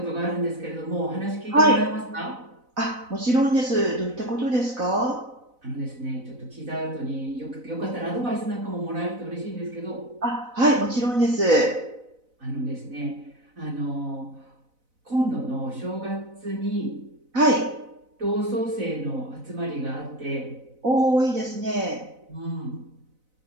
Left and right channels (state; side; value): late; left; 4.0 ms